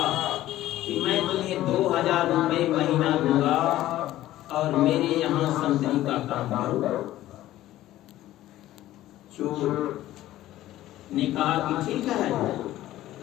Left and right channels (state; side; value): quieter; right; 14.6 dB